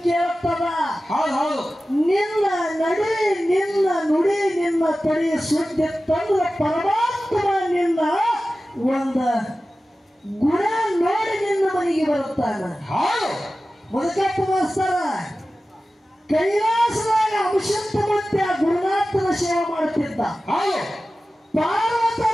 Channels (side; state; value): both; normal; correlation 0.95